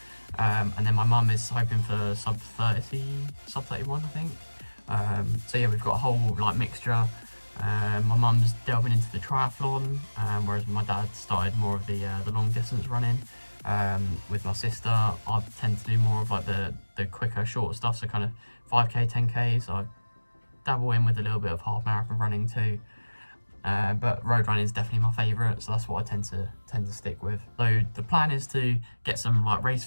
And then my mum is hoping for sub 30, sub 31 I think. So yeah, we've got a whole like mixture. My mum's delving into the triathlon, whereas my dad started more of the long distance running. With my sister, I tend to do more of like the quicker, shorter stuff, so kind of 5k, 10k. So I dabble in with a little bit of half marathon running too. But road running is definitely my favourite, so that's what I tend to stick with. So the plan is to get some like race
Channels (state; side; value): inverted; both; correlation -1.00